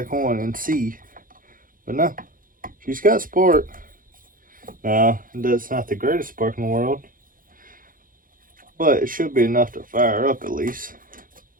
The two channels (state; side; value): late; left; 0.40 ms